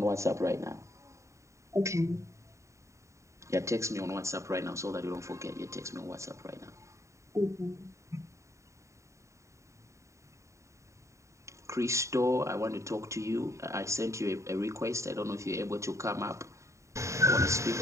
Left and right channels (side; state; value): left; late; 0.14 ms